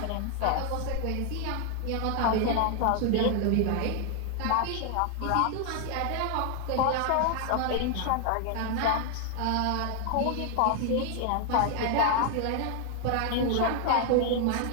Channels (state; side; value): different; both; correlation 0.00